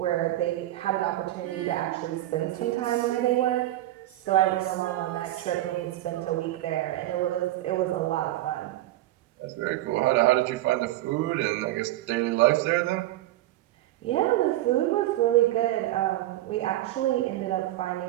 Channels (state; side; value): quieter; left; 15.3 dB